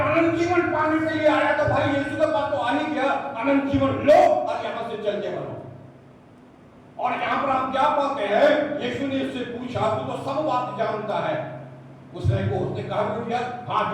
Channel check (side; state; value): both; identical; correlation 1.00